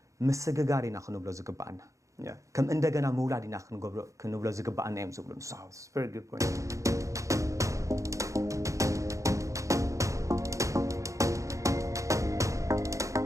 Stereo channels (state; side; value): late; left; 0.15 ms